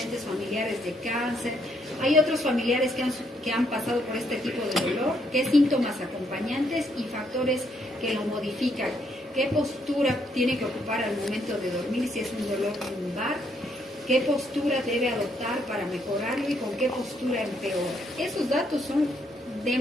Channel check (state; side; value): normal; both; correlation 0.72